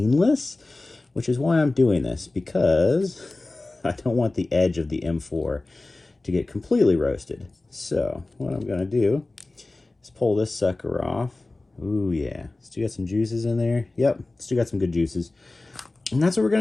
which is why I'm doing this, because I don't want the edge of the M4 to get completely roasted. So what I'm gonna do is pull this sucker off. Ooh, yeah, still got some juices in there. Yep, still got some good juices. And that's what we're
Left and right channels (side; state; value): right; quieter; 3.0 dB